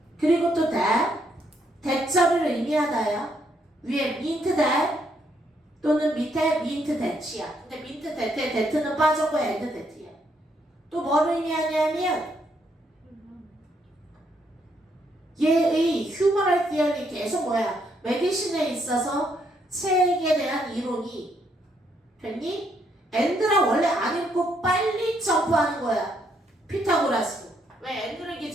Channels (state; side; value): normal; both; correlation 0.73